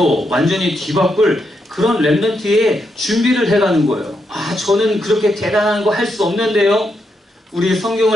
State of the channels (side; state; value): both; normal; correlation 0.81